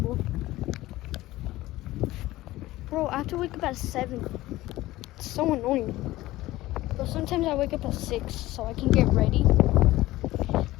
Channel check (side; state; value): right; quieter; 17.2 dB